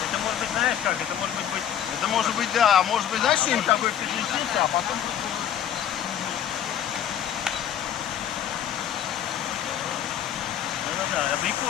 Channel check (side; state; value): right; quieter; 9.9 dB